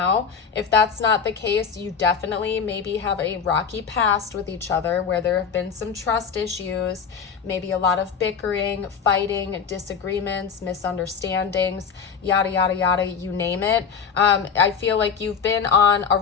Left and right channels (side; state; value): right; quieter; 6.4 dB